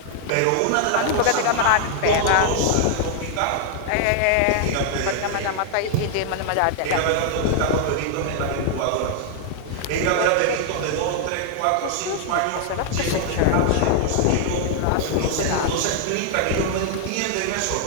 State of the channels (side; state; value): both; different; correlation 0.00